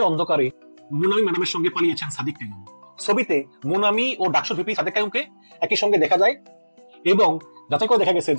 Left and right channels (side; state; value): both; inverted; correlation -1.00